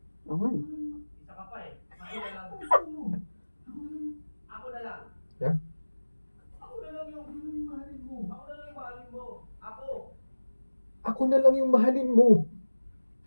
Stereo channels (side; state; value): both; inverted; correlation -1.00